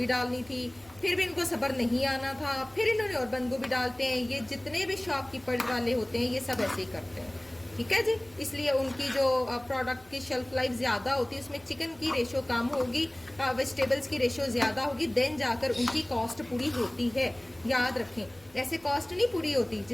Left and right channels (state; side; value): noise; right; hum, 28 dB below the sound